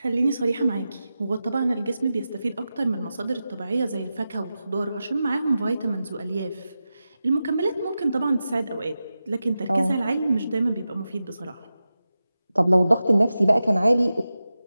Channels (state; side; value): inverted; both; correlation -0.92